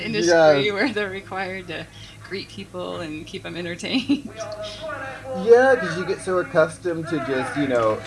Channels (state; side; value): identical; both; correlation 1.00